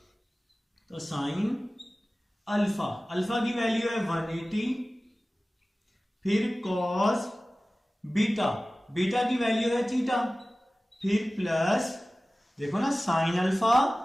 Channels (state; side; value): normal; both; correlation 0.97